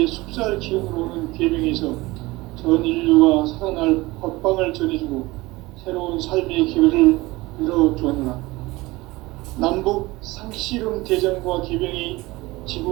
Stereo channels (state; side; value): quieter; left; 20.8 dB